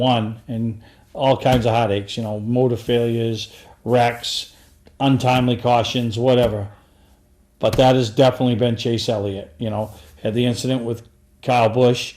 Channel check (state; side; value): identical; both; correlation 1.00